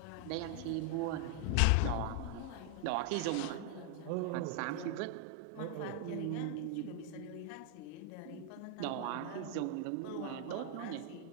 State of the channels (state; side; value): different; both; correlation 0.00